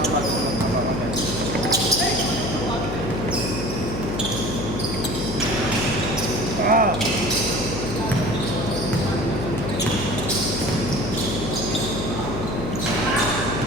ako bago magkakapagod. Ah!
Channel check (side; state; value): left; noise; hum, 4 dB below the sound